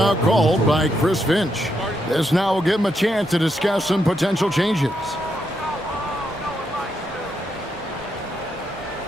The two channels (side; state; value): both; normal; correlation 0.80